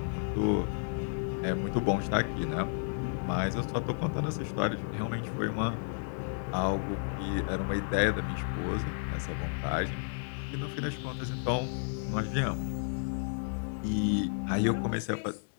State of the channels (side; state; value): right; silent; digital silence